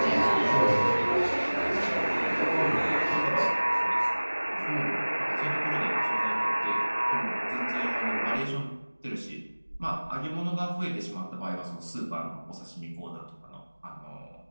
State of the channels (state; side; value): inverted; both; correlation -1.00